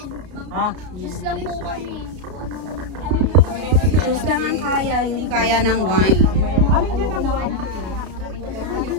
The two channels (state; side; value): late; left; 33 ms